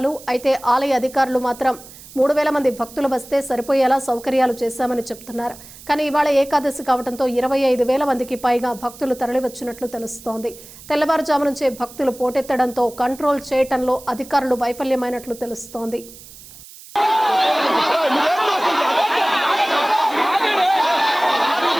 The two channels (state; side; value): noise; right; hiss, 19 dB below the sound